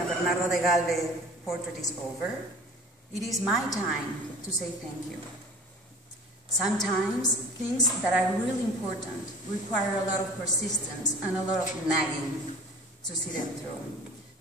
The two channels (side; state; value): both; normal; correlation 0.43